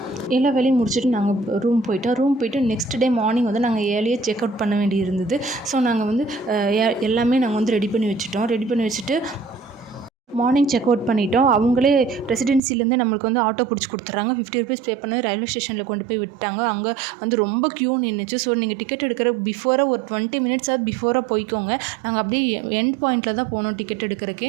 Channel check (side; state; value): left; drops out; at 12.6 s